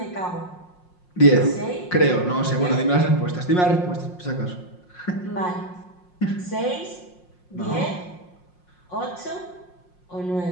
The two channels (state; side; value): late; right; 5.6 ms